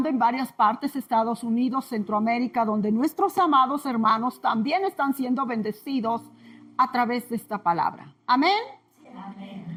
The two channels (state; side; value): identical; both; correlation 1.00